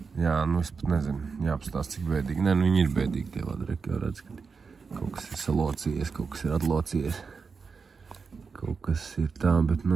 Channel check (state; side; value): quieter; left; 5.1 dB